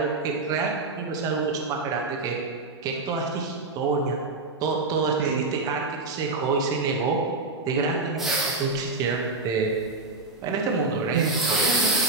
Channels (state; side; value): quieter; left; 3.5 dB